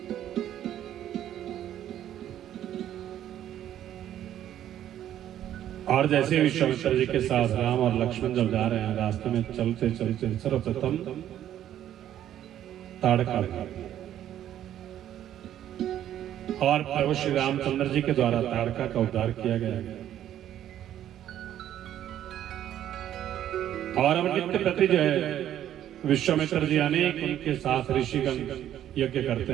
और जैसे विश्वामित्र जी के साथ राम और लक्ष्मण जब जा रहे हैं, रास्ते में चलते चलते सर्वप्रथम ताड़का और प्रभु श्री रामचंद्र जी के द्वारा ताड़का का उद्धार किया गया। और अब नित्य प्रति जो है विश्वामित्र जी अनेक उनके साथ ऋषिगण यज्ञ करते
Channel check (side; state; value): left; quieter; 11.4 dB